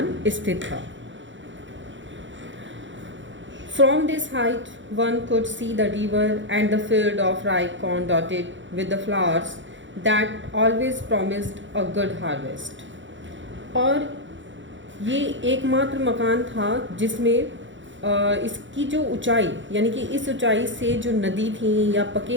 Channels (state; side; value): late; left; 0.55 ms